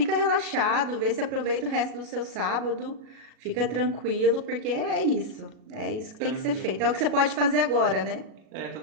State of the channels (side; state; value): left; late; 37 ms